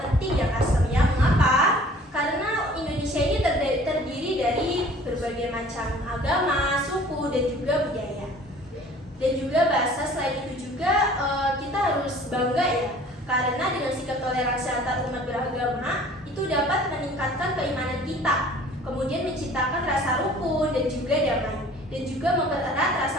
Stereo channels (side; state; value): both; normal; correlation 0.50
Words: ya Kak Surya. Mengapa? Karena Indonesia ini terdiri dari berbagai macam agama, suku, dan juga budaya. Dan juga bahasa. Selain itu juga kita harus bangga ya, karena dengan sikap toleransi antar umat beragama itu dapat meningkatkan keimanan kita, kemudian menciptakan rasa rukun dan juga damai, dan juga mempererat